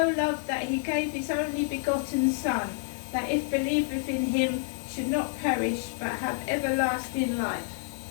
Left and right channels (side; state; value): right; silent; 59 dB below the other